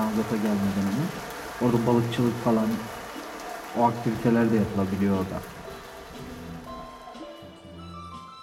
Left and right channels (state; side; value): identical; both; correlation 1.00